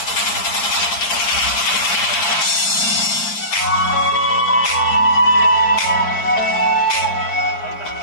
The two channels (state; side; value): late; right; 4.6 ms